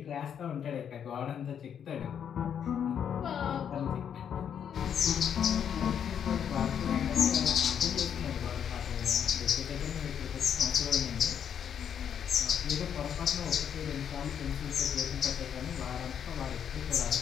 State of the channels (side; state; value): right; quieter; 8.4 dB